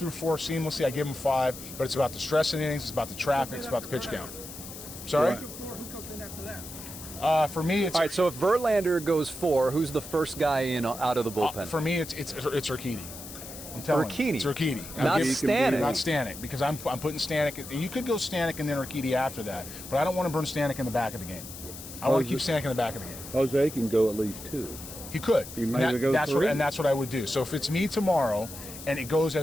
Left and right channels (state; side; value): noise; left; hiss, 12 dB below the sound